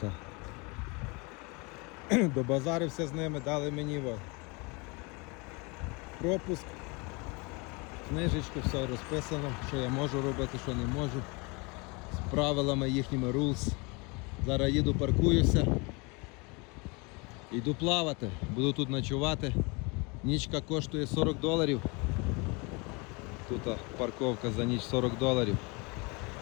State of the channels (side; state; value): right; quieter; 28.8 dB